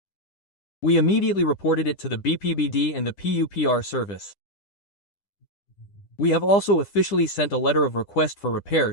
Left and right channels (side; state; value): right; late; 10 ms